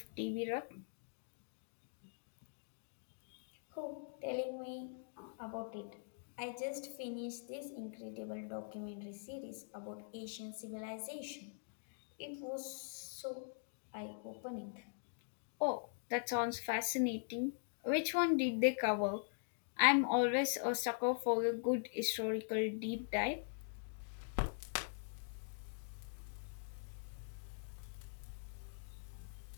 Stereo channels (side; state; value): right; silent; digital silence